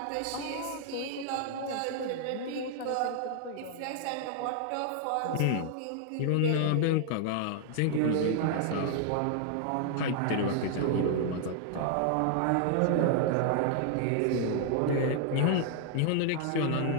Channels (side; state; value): both; different; correlation 0.00